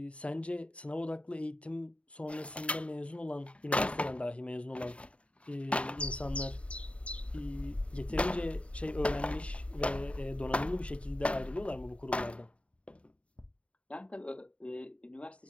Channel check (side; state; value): right; late; 0.062 ms